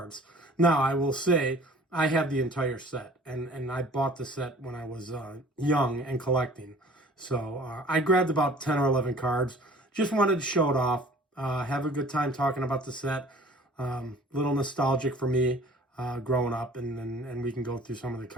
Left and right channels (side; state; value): both; normal; correlation 0.49